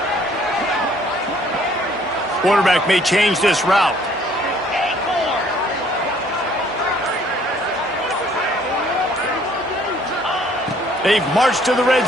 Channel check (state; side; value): normal; both; correlation 0.60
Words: Quarterback may change this route. They've marched to the red